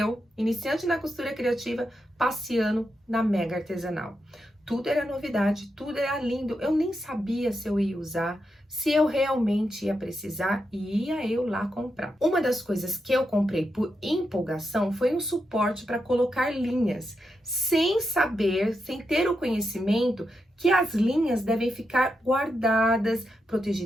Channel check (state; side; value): normal; both; correlation 0.85